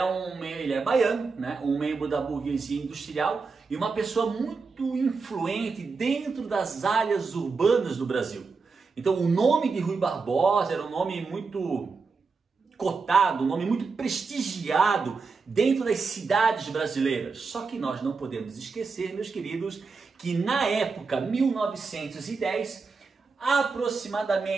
baiano, né? Um membro da burguesia industrial e uma pessoa muito influente dentro das áreas urbanas do Brasil. Então o nome de Rui Barbosa era um nome muito cotado, um nome muito prestigiado dentro das cidades brasileiras. Só que nós não podemos esquecer, meus queridos, que na época 1910,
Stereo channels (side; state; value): left; quieter; 4.6 dB